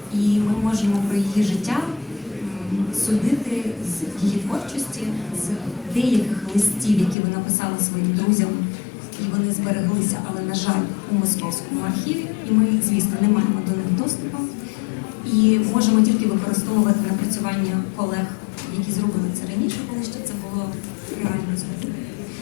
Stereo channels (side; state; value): right; drops out; at 7.2 s